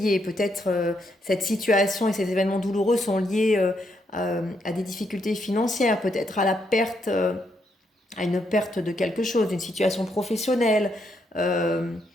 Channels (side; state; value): both; normal; correlation 0.77